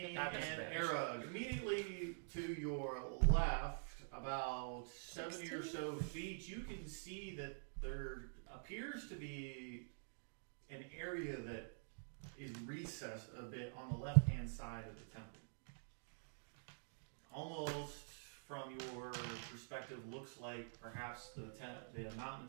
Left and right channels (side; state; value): left; silent; digital silence